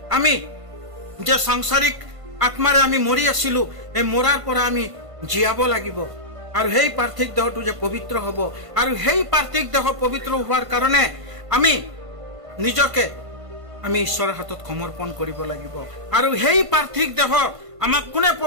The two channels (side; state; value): left; late; 1.5 ms